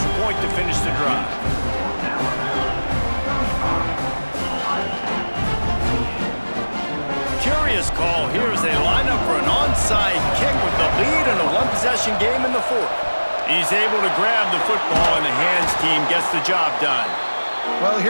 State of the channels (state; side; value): inverted; both; correlation -1.00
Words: point to finish the drive. Curious call here as they line up for an onside kick with the lead in a one-possession game in the 4th. He's able to grab the football, and the hands team gets the job done. Well,